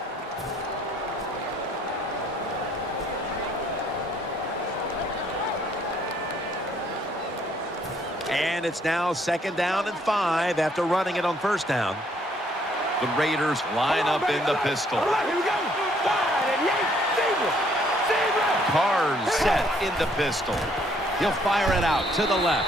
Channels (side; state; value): both; normal; correlation 0.66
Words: And it's now second down and 5 after running it on first down. The Raiders line up in the pistol. Carr's set in the pistol. He'll fire it out to the